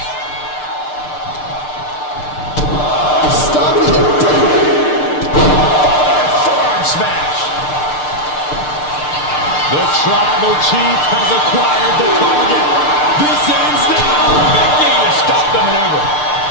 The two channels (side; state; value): right; late; 6.7 ms